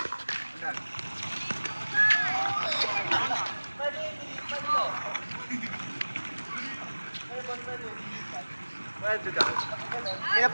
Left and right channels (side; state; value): both; inverted; correlation -1.00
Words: Pwede daw. Kaya